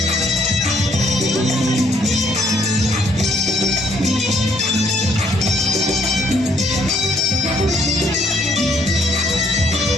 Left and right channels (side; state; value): both; normal; correlation 0.66